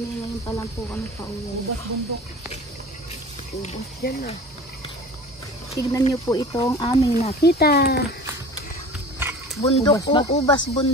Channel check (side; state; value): both; normal; correlation 0.40